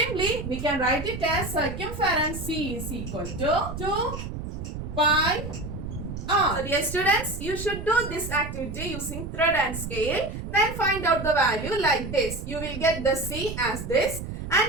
we can write it as circumference C is equal to 2 pi r. So dear students, you should do this activity using thread and scale. Then find out the value like this. You will get the C as this.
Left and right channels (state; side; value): noise; right; rumble, 8 dB below the sound